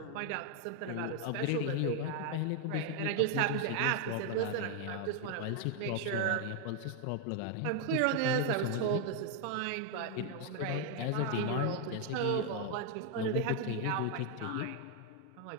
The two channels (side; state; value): both; different; correlation 0.00